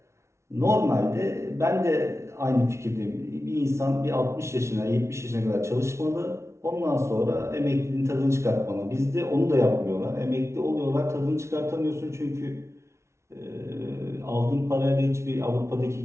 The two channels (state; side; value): late; left; 0.13 ms